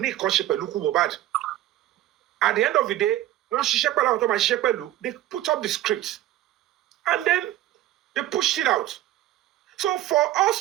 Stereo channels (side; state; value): left; quieter; 14.2 dB